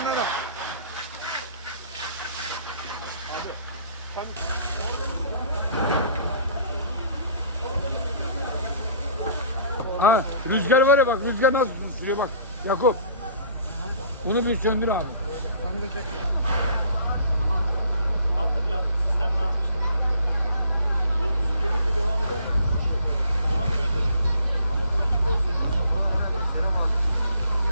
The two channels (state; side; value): inverted; both; correlation -0.54